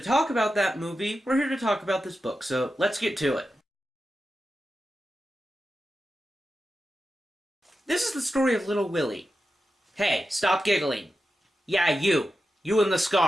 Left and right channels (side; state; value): both; normal; correlation 0.91